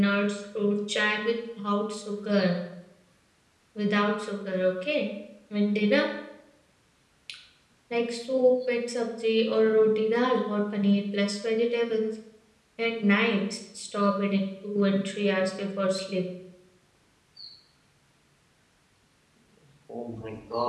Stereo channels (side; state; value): both; identical; correlation 1.00